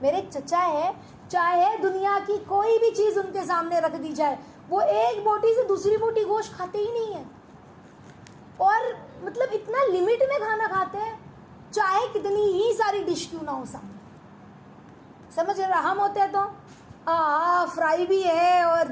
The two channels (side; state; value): both; identical; correlation 1.00